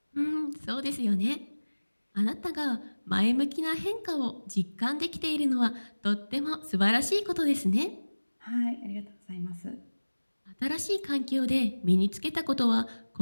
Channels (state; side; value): inverted; both; correlation -1.00